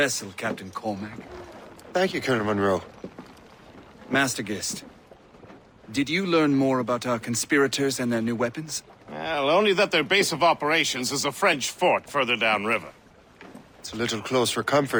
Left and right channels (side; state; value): both; identical; correlation 1.00